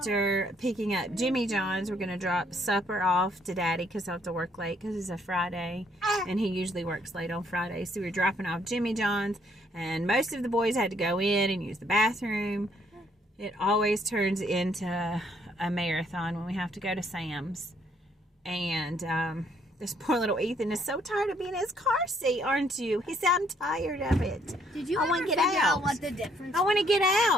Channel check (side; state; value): both; normal; correlation 0.67